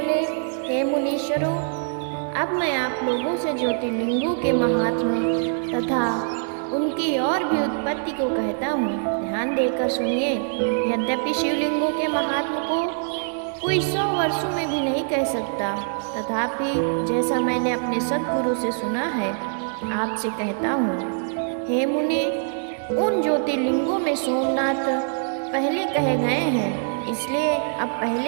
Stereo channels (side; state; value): left; silent; digital silence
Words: हे मुनीश्वरों, अब मैं आप लोगों से ज्योतिर्लिंगों के महात्म्य तथा उनकी और भी उत्पत्ति को कहता हूँ। ध्यान देकर सुनिए। यद्यपि शिवलिंगों के महात्म्य को कोई 100 वर्षों में भी नहीं कह सकता, तथापि जैसा मैंने अपने सद्गुरु से सुना है, आपसे कहता हूँ। हे मुने, उन ज्योतिर्लिंगों में सोमनाथ पहले कहे गए हैं, इसलिए अब